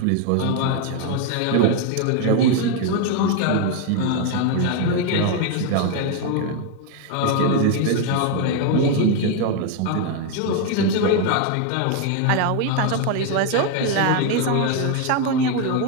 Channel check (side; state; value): both; different; correlation 0.01